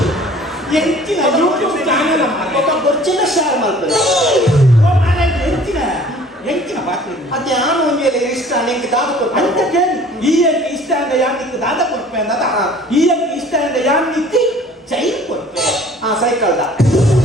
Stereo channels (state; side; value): normal; both; correlation 0.51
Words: ಎಂಚಿನ ಯೂಟ್ಯೂಬ್ ಚಾನೆಲ್ ఒక బొచ్చిన షేర్ ಮಾಡ್ಕೊಳ್ಳಿ ಎಂಚಿನ ಪಾತ್ರ ಅದೇ ನಾನು ಒಂದು ವೇಳೆ ಇಷ್ಟ ನಿಂಗೆ ದಾದ ಅಂತ ಕೇಳಿ ಈ ಇಷ್ಟ ಅಂದ್ರೆ ಯಾರು ನಿಂಗೆ ದಾದ ಕೊಡ್ಪೆ ಅಂದ ಈ ಇಷ್ಟ ಅಂದ್ರೆ ಯಾರು ನಿಂತಿ ಚೈನ್ ಕೊಡ್ಪೆ ಸೈಕಲ್ದ